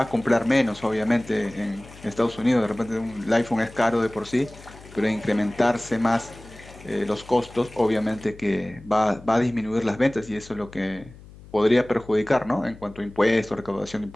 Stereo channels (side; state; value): left; noise; hum, 20 dB below the sound